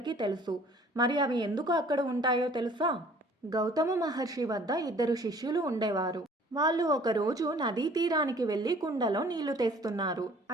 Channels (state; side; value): normal; both; correlation 0.53